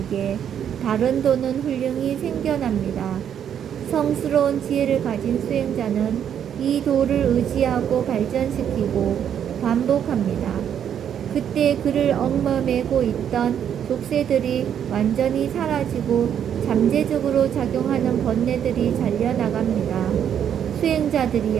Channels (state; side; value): quieter; left; 9.0 dB